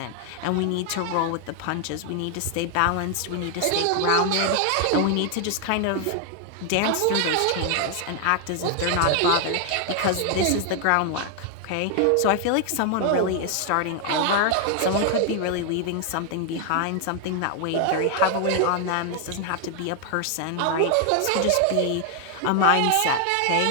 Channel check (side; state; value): both; different; correlation 0.00